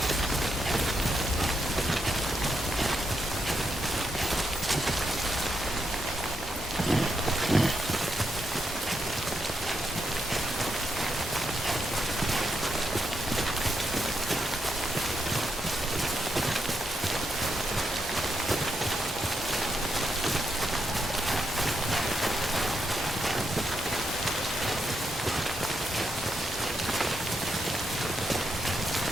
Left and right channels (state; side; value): normal; both; correlation 0.81